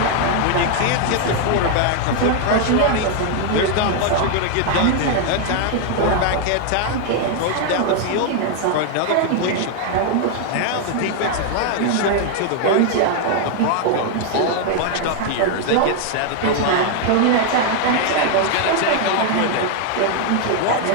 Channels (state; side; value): different; both; correlation 0.00